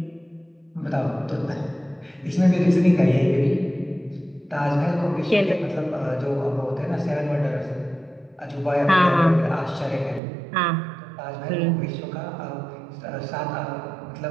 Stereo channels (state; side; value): drops out; left; at 10.2 s